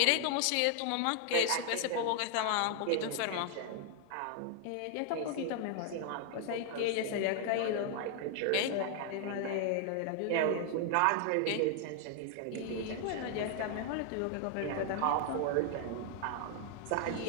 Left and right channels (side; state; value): both; different; correlation 0.00